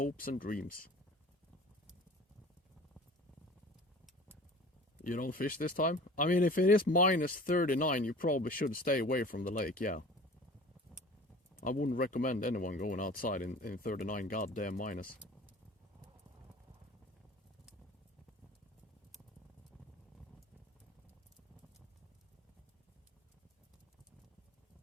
and dreams. You don't fish this time? I mean, if it is minus 39, you probably should stay away from the lake, yeah. I wouldn't recommend anyone going outside in 39 goddamn minus.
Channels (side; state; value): both; normal; correlation 0.42